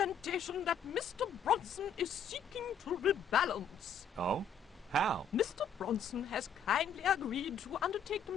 that Mr. Bronson is seeking to rebalance. Oh? How? Mr. Bronson has kindly agreed to undertake the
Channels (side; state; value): right; quieter; 5.7 dB